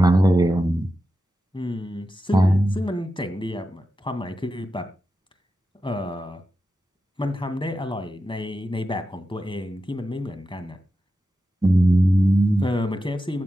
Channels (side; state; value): both; normal; correlation 0.91